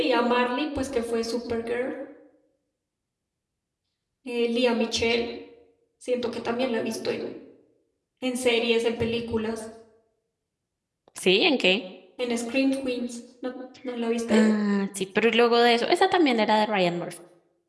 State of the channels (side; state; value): both; identical; correlation 1.00